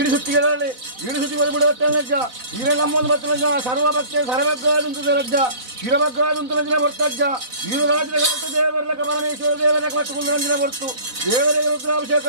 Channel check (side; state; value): left; late; 4.0 ms